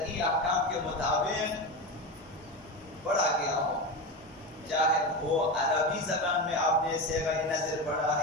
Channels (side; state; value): both; normal; correlation 0.20